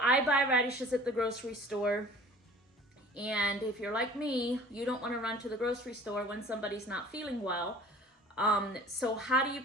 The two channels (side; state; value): both; normal; correlation 0.46